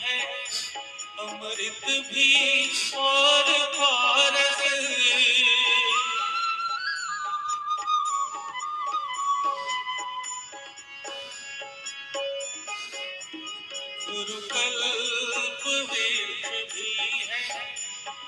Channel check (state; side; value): identical; both; correlation 1.00